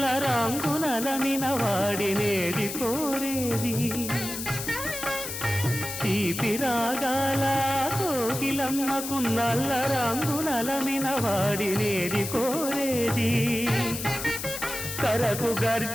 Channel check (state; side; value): noise; left; hiss, 6 dB below the sound